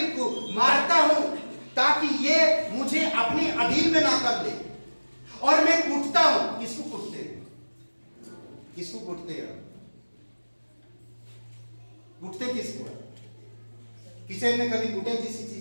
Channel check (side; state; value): both; inverted; correlation -1.00